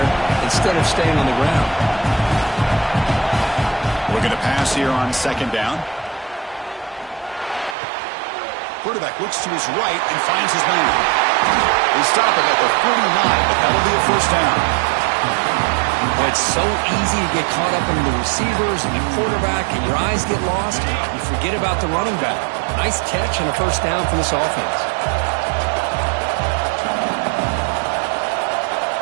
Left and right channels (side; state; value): left; drops out; at 7.8 s